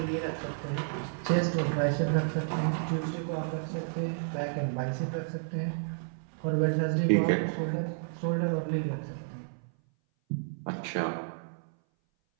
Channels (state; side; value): silent; left; 57 dB below the other